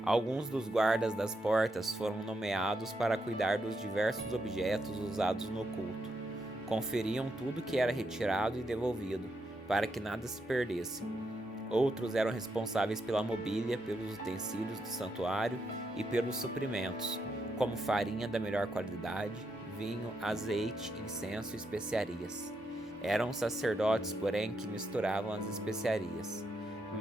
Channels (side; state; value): both; normal; correlation 0.81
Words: Alguns dos guardas das portas foram nomeados para cuidar dos diversos objetos usados no culto. Conferiam tudo que era retirado e devolvido, para que nada se perdesse. Outros eram responsáveis pela mobília, pelos utensílios do santuário e pelos suprimentos, como farinha da melhor qualidade, vinho, azeite, incenso e especiarias. Eram sacerdotes, porém, que misturavam as especiarias.